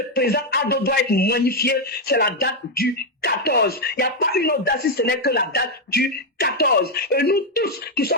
président Ado doit être magnifié, c'est la date du 14. Il n'y a pas une autre date si ce n'est que la date du 14. Et nous tous qui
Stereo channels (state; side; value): normal; both; correlation 0.02